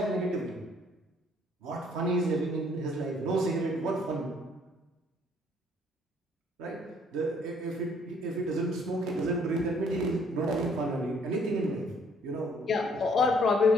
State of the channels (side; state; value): both; normal; correlation 0.63